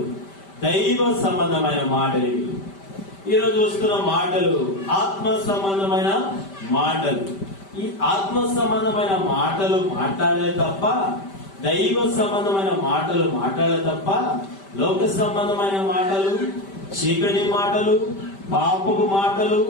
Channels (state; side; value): late; right; 5.1 ms